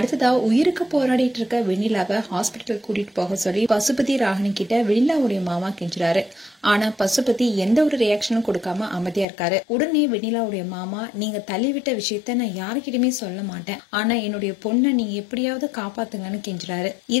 உயிருக்கு போராடிட்டு இருக்க வெண்ணிலாவை ஹாஸ்பிட்டல் கூட்டிட்டு போக சொல்லி பசுபதி ராகினி கிட்ட வெண்ணிலாவுடைய மாமா கெஞ்சுறாரு. ஆனா பசுபதி எந்த ஒரு ரியாக்ஷனும் கொடுக்காம அமைதியா இருக்காரு. உடனே வெண்ணிலாவுடைய மாமா நீங்க தள்ளிவிட்ட விஷயத்த நான் யாருக்கிட்டுமே சொல்ல மாட்டேன், ஆனா என்னுடைய பொண்ணை நீங்க எப்படியாவது காப்பாத்துங்கன்னு கெஞ்சுறாரு.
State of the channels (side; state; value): right; drops out; at 9.2 s